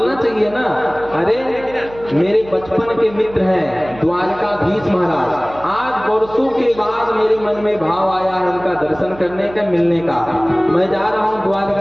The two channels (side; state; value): right; noise; hum, 18 dB below the sound